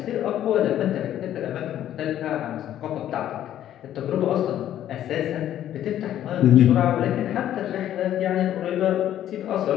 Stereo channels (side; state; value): right; quieter; 11.6 dB